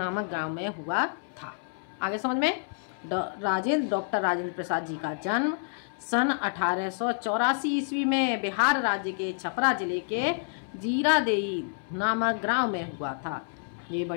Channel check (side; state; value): right; silent; 59 dB below the other